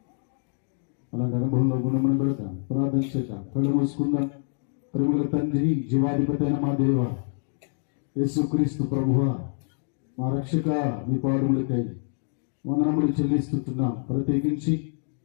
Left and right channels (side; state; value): right; silent; 58 dB below the other